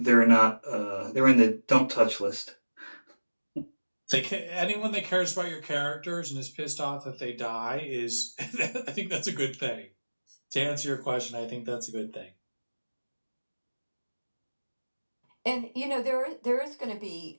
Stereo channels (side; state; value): both; inverted; correlation -1.00